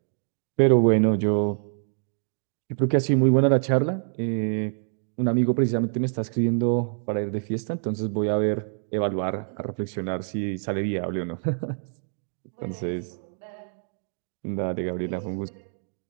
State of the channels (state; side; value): silent; left; digital silence